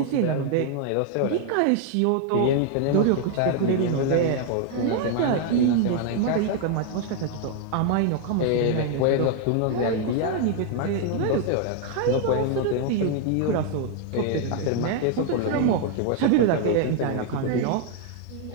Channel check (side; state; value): both; different; correlation 0.00